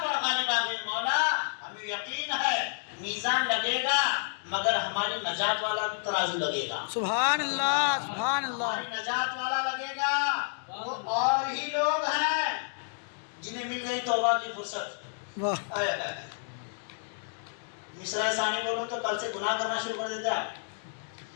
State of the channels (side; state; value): right; silent; digital silence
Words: پر غالب آ گئی۔ مولا ہمیں یقین ہے میزان لگے گا مگر ہماری نجات والا ترازو لگے گا، سبحان اللہ سبحان اللہ۔ ہماری نجات والا لگے گا۔ وہ اور ہی لوگ ہیں جنہیں مل گئی توبہ کی فرصت۔ واہ، مصرع ثانی بولو تو کل سے گناہ کرنا شروع کر دیتے آپ۔